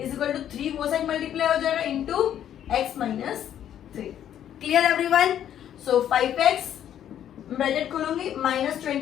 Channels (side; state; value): right; quieter; 10.4 dB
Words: equal to 3 वो साइड मल्टीप्लाई हो जाएगा into x minus 3. Clear everyone? So 5x bracket खोलूंगी माइनस